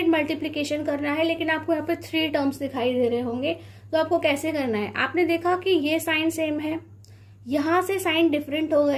मल्टीप्लिकेशन करना है, लेकिन आपको यहाँ पे 3 टर्म्स दिखाई दे रहे होंगे। तो आपको कैसे करना है, आपने देखा कि ये साइन सेम है, यहाँ से साइन डिफरेंट हो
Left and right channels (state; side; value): identical; both; correlation 1.00